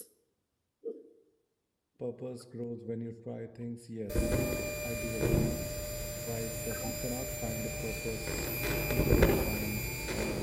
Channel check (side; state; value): both; identical; correlation 1.00